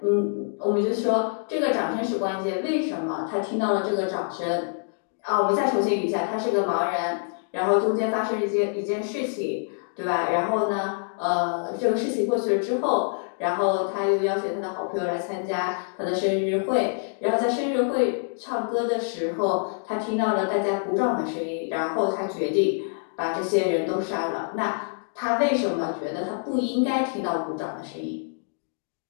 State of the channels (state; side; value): silent; right; digital silence